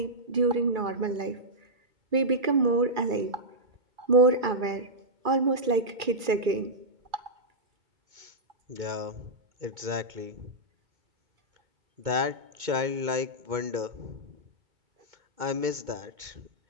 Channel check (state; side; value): late; left; 2.3 ms